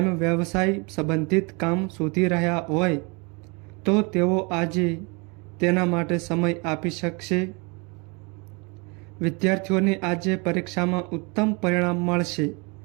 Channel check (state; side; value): quieter; left; 30.3 dB